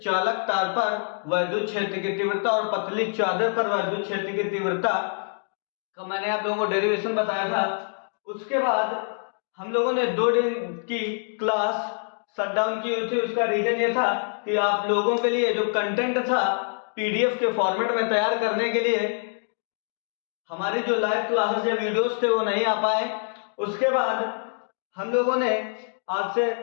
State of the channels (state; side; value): silent; right; digital silence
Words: चालक तार पर वैद्युत क्षेत्र की तीव्रता और पतली चादर पर वैद्युत क्षेत्र की तीव्रता का मैंने आप लोगों को डेरिवेशन बताया था। उसके बाद हम लोगों ने 2 दिन की क्लास शट डाउन की हुई थी। उसका रीजन ये था कि आप लोगों के लिए जो कंटेंट था पीडीएफ के फॉर्मेट में तैयार करने के लिए हमारी जो लाइव क्लासेस या वीडियोस थे वो नहीं आ पाए। उसके बाद हम लोगों ने आज से